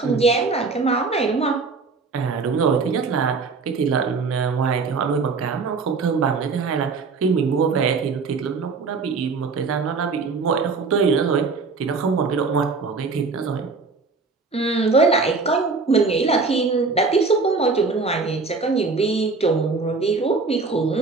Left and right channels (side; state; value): left; quieter; 4.4 dB